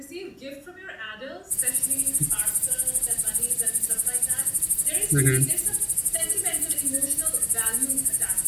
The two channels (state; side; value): identical; both; correlation 1.00